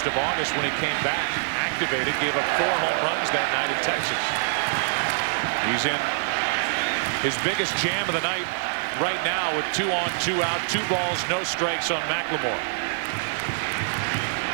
of August when he came back, activated, gave up 4 home runs that night in Texas. He's in his biggest jam of the night right now with 2 on, 2 out, 2 balls, no strikes on McLemore.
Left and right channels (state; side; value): silent; left; digital silence